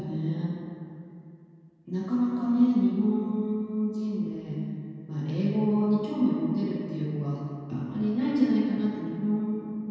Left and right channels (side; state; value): both; identical; correlation 1.00